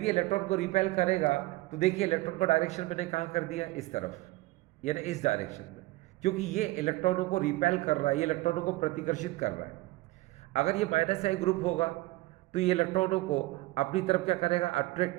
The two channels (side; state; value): left; quieter; 19.7 dB